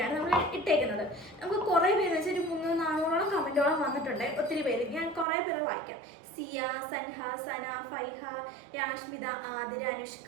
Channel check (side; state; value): left; drops out; at 5.2 s